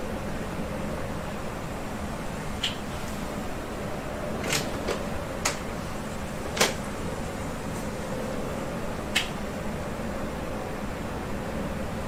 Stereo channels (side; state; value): both; identical; correlation 1.00